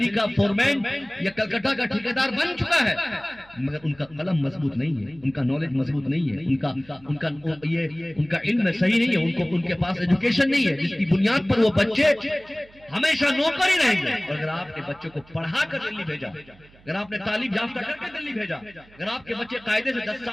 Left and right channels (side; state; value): right; noise; hum, 26 dB below the sound